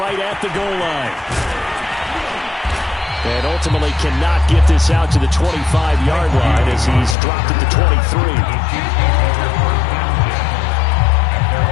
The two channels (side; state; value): right; drops out; at 7.2 s